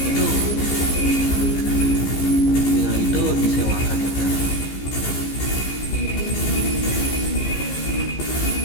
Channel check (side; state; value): right; late; 15 ms